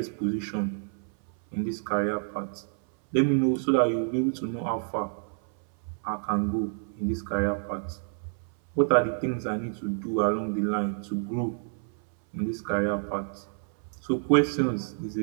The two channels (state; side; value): silent; left; 59 dB below the other